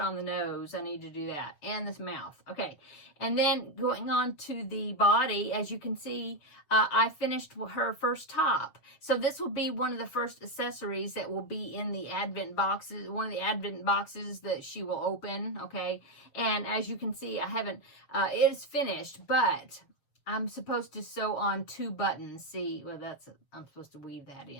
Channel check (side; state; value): right; late; 7.2 ms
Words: the nose. I need to do that, and this mouth. Okay, and then going on to the body, as you can see, I finished her first top. So this will be one of the first accessories that will be in the Advent boxes, one of the Advent boxes that she will open. Okay, and as you can see, I haven't. It is finished, but I'm supposed to sew on 2 buttons. See, well, I'm supposed to weave that